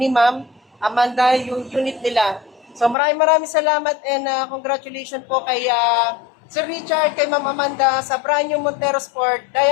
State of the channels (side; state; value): right; drops out; at 3.0 s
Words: Ma'am Amanda yung unit nila. So, maraming salamat and congratulations po kay Sir Richard, kay Ma'am Amanda sa brand new Montero Sport